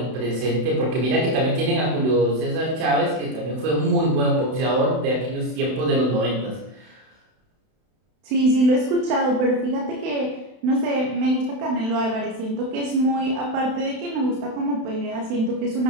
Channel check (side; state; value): left; late; 32 ms